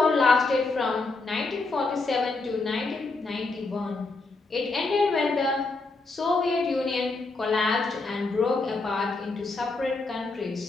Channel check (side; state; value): right; quieter; 3.6 dB